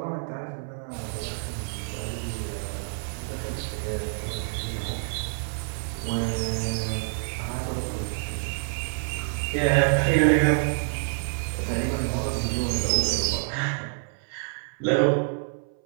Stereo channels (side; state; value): left; silent; 60 dB below the other